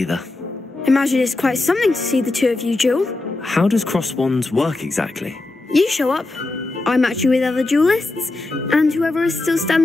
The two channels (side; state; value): right; quieter; 3.1 dB